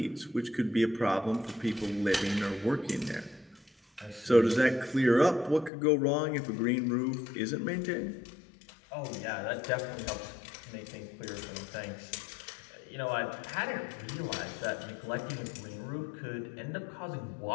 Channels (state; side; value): drops out; right; at 5.7 s